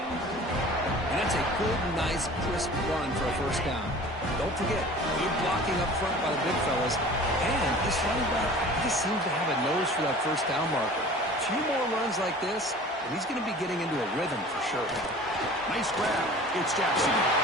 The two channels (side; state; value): both; normal; correlation 0.43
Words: And that's a good, nice, crisp run for a first down. Don't forget, good blocking up front by the big fellas. And this running back just seems to have a nose for that first down marker. A few more runs like this, and he's going to be getting into a rhythm for sure. Nice grab. It's Jackson.